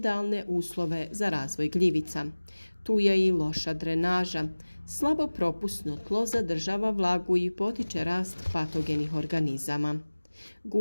uslove za razvoj gljivica. Tu je i loša drenaža. Slabo propusno tlo zadržava vlagu i potiče rast patogenih organizama.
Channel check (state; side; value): inverted; both; correlation -1.00